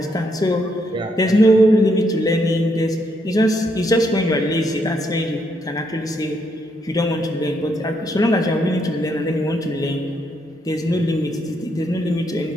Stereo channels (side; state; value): both; normal; correlation 0.75